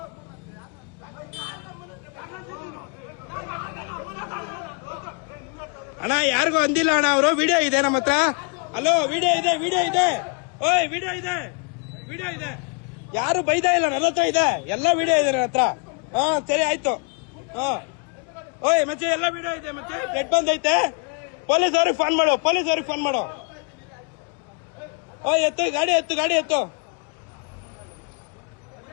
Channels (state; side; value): quieter; right; 36.0 dB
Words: ಅಣ್ಣ, ಯಾರಿಗೂ ಅಂದಿಲ್ಲ ಅಣ್ಣ. ಅವರು ವಿಡಿಯೋ ಇದೆ ನಮ್ಮ ಹತ್ರ. ಹಲೋ ವಿಡಿಯೋ ಇದೆ, ವಿಡಿಯೋ ಇದೆ. ಓಯ್ ವಿಡಿಯೋ ಇದೆ, ವಿಡಿಯೋ ಇದೆ. ಯಾರು ಬೈದಾ ಇಲ್ಲ, ನನ್ನ ಹತ್ರ ಇದೆ, ಎಲ್ಲ ವಿಡಿಯೋ ಇದೆ ನನ್ನ ಹತ್ರ. ಹಾ ಸರಿ ಆಯ್ತು. ಹಾ ಓಯ್ ಮಚ್ಚೆ, ಎಲ್ಲ ವಿಡಿಯೋ ಇದೆ ಮಚ್ಚೆ. ರೆಡ್ ಬಂದೈತೆ, ಪೊಲೀಸ್ ಅವ್ರಿಗೆ ಫೋನ್ ಮಾಡು, ಪೊಲೀಸ್ ಅವ್ರಿಗೆ ಫೋನ್ ಮಾಡು. ಓಯ್ ಎತ್ತು ಗಾಡಿ, ಎತ್ತು ಗಾಡಿ, ಎತ್ತು.